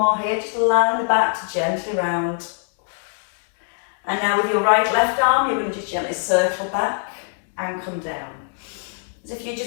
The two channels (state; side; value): silent; right; 60 dB below the other